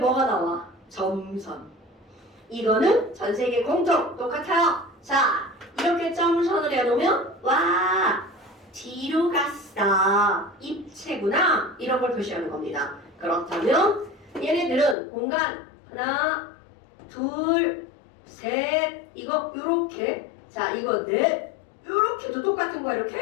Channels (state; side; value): drops out; right; at 15.0 s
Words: 나와? 점선. 이거는 전 세계 공통 똑같아요. 자, 이렇게 점선을 해놓으면 와, 뒤로 갔어. 입체구나. 이런 걸 표시하는 겁니다. 그렇다면 얘네들은 공간 하나, 둘, 셋, 이거 요렇게. 자, 이거 넷, 요렇게도 똑같은 거야,